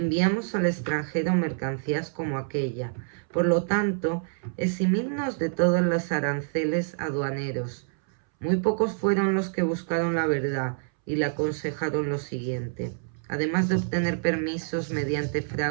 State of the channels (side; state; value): left; silent; 60 dB below the other